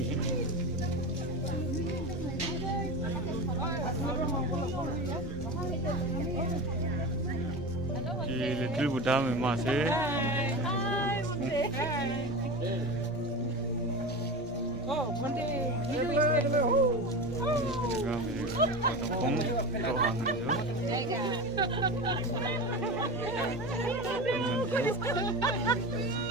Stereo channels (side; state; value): both; normal; correlation 0.26